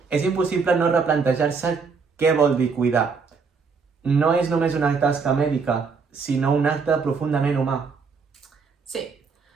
és impossible no replantejar-se què vol dir cuidar. No és només una tasca mèdica, sinó un acte profundament humà. Sí,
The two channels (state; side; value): quieter; left; 5.1 dB